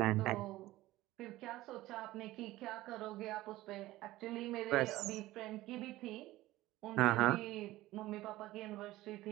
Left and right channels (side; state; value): left; quieter; 17.0 dB